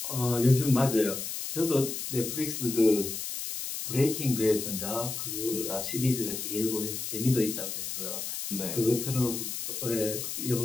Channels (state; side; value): noise; left; hiss, 5 dB below the sound